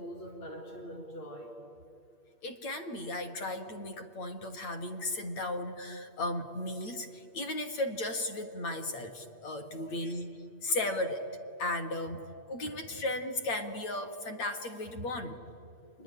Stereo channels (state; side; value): late; right; 8.5 ms